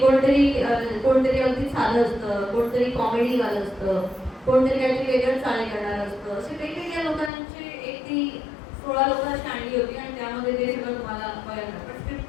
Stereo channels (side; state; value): right; drops out; at 7.3 s